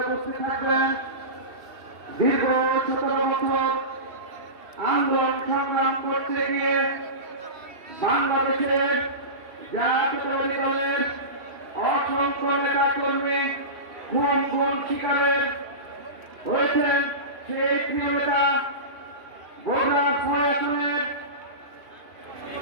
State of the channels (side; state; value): left; late; 2.7 ms